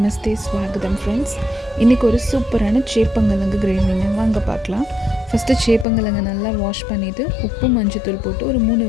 ஸ்வாகதம் ஃப்ரெண்ட்ஸ். இன்றைக்கி ஒரு சூப்பரான சேப்பங்கிழங்கு கிரேவிங்க வாங்க பார்க்கலாம். ஃபஸ்ட்டு சேப்பங்கிழங்கு நல்லா வாஷ் பண்ணிவிட்டு உப்பு மஞ்சத்தூள் போட்டு ஒரு 3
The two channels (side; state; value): right; drops out; at 5.9 s